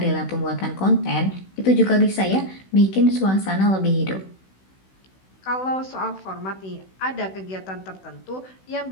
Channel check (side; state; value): right; late; 16 ms